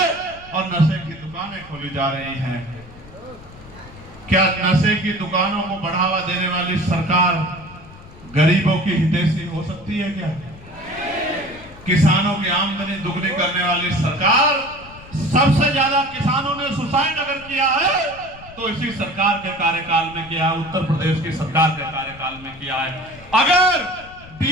और नशे की दुकानें खोली जा रही हैं। क्या नशे की दुकानों को बढ़ावा देने वाली सरकार गरीबों की हितैषी हो सकती है क्या? किसानों की आमदनी दुगनी करने वाली सरकार, सबसे ज्यादा किसानों ने सुसाइड अगर किया है तो इसी सरकार के कार्यकाल में किया है, उत्तर प्रदेश की सरकार के कार्यकाल में किया है। अगर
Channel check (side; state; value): left; noise; rumble, 20 dB below the sound